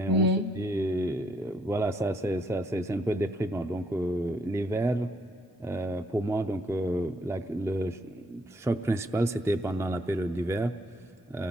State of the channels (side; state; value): both; normal; correlation 0.70